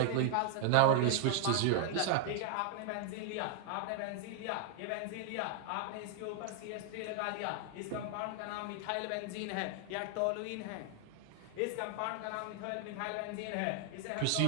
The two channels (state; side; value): different; both; correlation 0.00